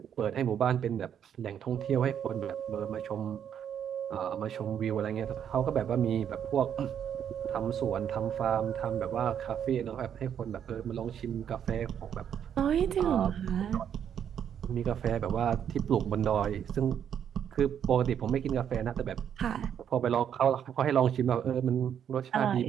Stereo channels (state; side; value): quieter; left; 8.9 dB